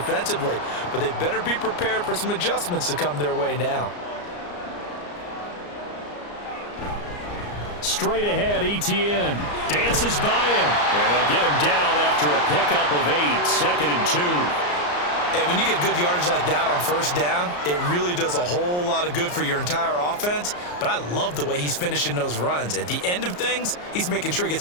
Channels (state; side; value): late; right; 34 ms